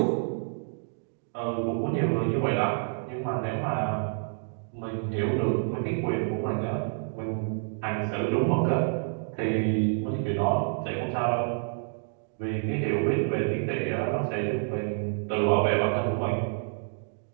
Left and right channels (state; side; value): silent; left; digital silence